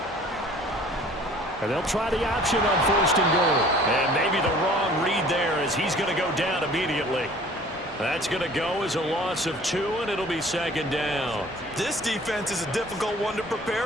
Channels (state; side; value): normal; both; correlation 0.50